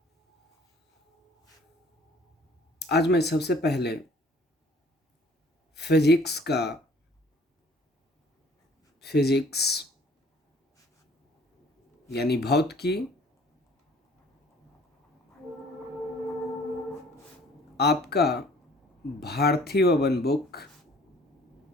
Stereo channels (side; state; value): both; normal; correlation 0.55